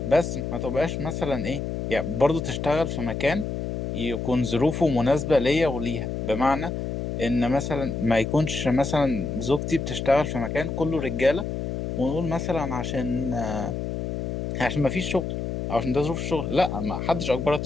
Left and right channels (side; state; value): left; noise; hum, 3 dB below the sound